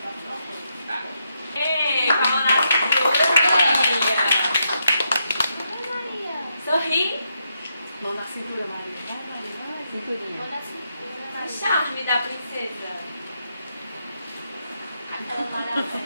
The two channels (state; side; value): inverted; both; correlation -0.81